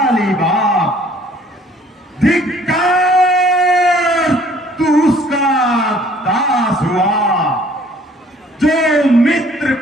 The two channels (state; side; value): normal; both; correlation 0.57